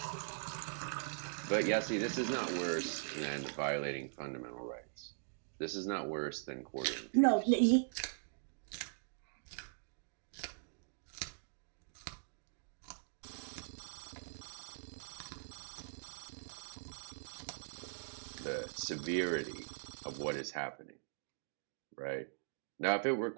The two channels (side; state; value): left; silent; digital silence